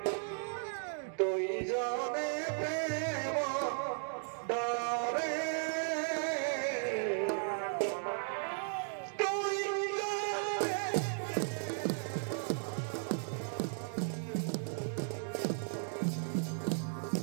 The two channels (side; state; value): left; silent; 54 dB below the other